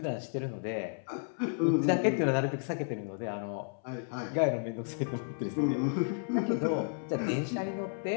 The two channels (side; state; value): right; silent; 56 dB below the other